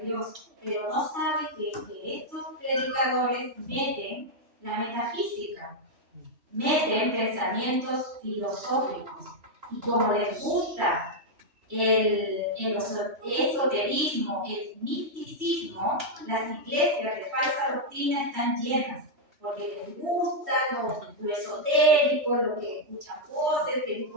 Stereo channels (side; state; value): left; late; 3.1 ms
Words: Dios, pero no saben que estos predicadores meten la metafísica, meten pensamientos filosóficos, y como les gusta el esoterismo, el misticismo, las iglesias de falsa doctrina están llenas, porque les gusta lo esotérico, lo que escuchan voces, que vi